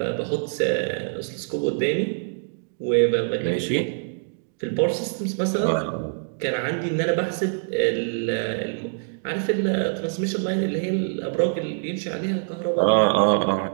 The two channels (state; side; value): silent; left; digital silence